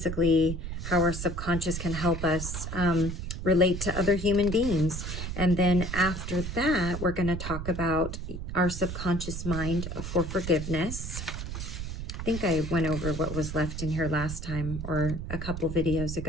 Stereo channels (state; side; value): noise; right; rumble, 6 dB below the sound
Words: how our subconscious can help us relate to other human beings. And then after that, we're going to talk about our subconscious mind for forgiveness. I think I went over what was left in here last time, or a couple videos